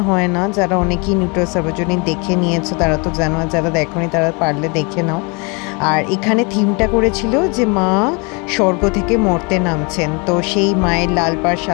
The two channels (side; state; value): right; quieter; 31.5 dB